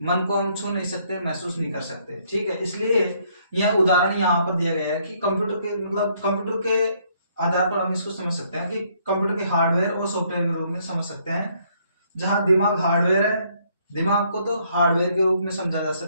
को हम छू नहीं सकते, महसूस नहीं कर सकते, ठीक है। इसलिए यह उदाहरण यहाँ पर दिया गया है कि कंप्यूटर के आधार पर हम इसको समझ सकते हैं कि कंप्यूटर के हार्डवेयर और सॉफ्टवेयर के रूप में समझ सकते हैं। जहां दिमाग हार्डवेयर है, दिमाग को तो हार्डवेयर के रूप में समझा जा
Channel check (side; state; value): both; inverted; correlation -0.68